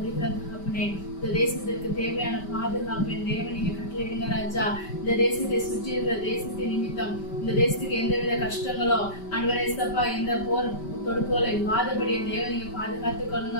தகப்பனே, இந்த தேசத்திற்கு தேவையான பாதுகாப்பு தேவன் நீங்க கட்டளையிடுங்க ராஜா. இந்த தேசத்தை சுற்றி இருக்கிற தேசத்தின் நிமித்தம் இந்த தேசத்துக்கு எந்தவித கஷ்டங்களோ ஆண்டவரே சப்பா, எந்த போர் தொடுப்புகளை இல்லாதபடியே தேவன் நீங்க பாதுகாத்துக்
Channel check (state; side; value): late; right; 5.1 ms